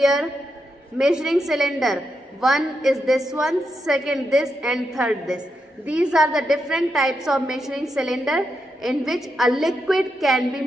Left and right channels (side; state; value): both; normal; correlation 0.84